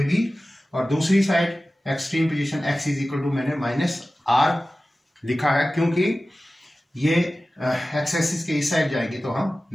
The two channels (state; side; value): normal; both; correlation 0.96